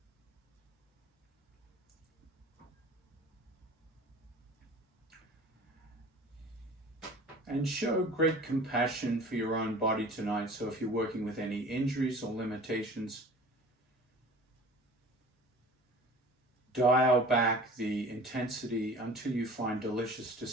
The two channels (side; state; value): both; normal; correlation 0.43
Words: And show great compassion for your own body tonight. So if you're working with any injuries or limitations, dial back the intensity until you find delicious